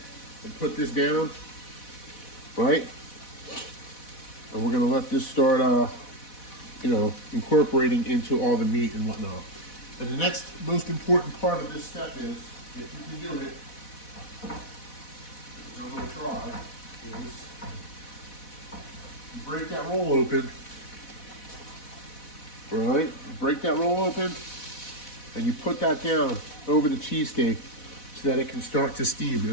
and put this down, right? And we're gonna let this start, incorporating into all the meat and whatnot. And the next most important part of this step is, if you can do it, which I'm gonna try, is you break that roll open, right? Break that roll open, and you put that down over the cheesesteak so that it can start to steam.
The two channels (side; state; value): right; late; 4.1 ms